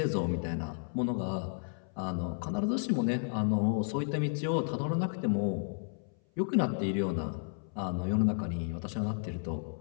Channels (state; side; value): silent; right; 56 dB below the other